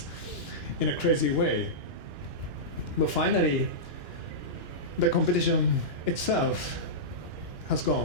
in a crazy way. But finally, the competition itself has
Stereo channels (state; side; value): late; left; 2.9 ms